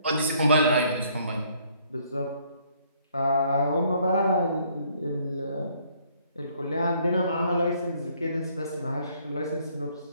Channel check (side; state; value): both; inverted; correlation -0.64